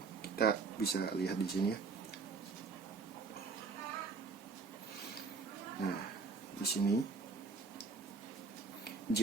Kita bisa lihat di sini ya. Nah, di sini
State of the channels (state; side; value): quieter; left; 4.7 dB